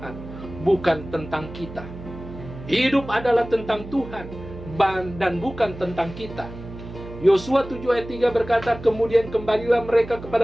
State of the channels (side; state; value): right; noise; hum, 13 dB below the sound